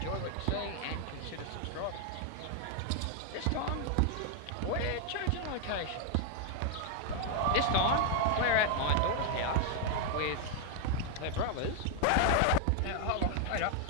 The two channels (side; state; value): both; different; correlation 0.00